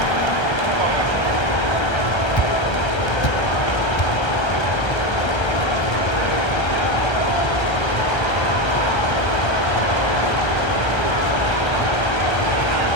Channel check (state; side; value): late; right; 1.3 ms